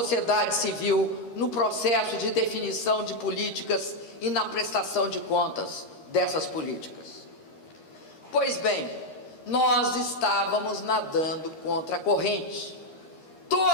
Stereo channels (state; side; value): late; right; 13 ms